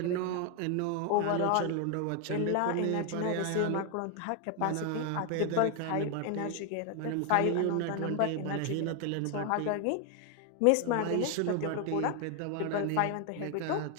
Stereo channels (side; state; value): both; different; correlation 0.00